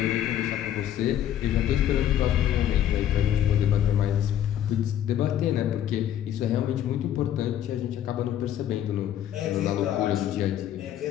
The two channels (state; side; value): quieter; right; 11.0 dB